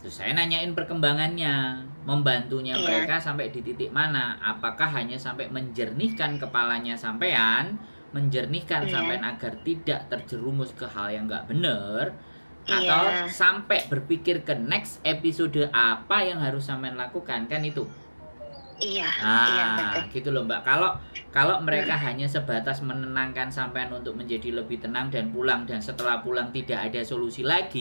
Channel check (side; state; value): both; inverted; correlation -1.00